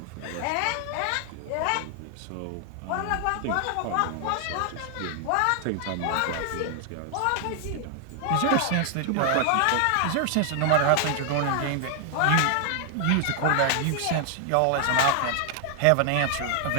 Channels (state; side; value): different; both; correlation 0.00